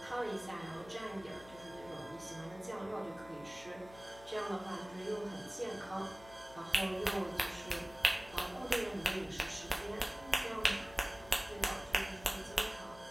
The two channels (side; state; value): left; noise; hum, 20 dB below the sound